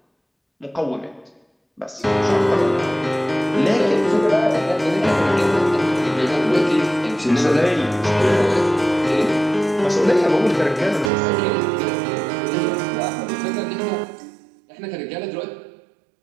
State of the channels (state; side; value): drops out; left; at 11.1 s